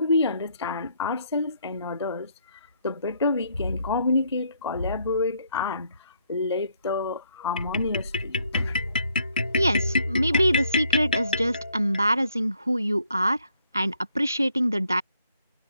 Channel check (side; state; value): both; inverted; correlation -0.69